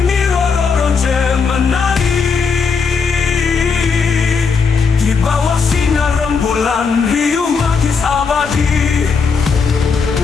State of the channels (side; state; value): right; quieter; 5.2 dB